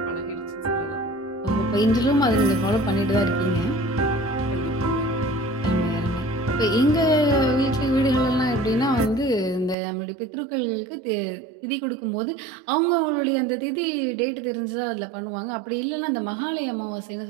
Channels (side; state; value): left; drops out; at 9.8 s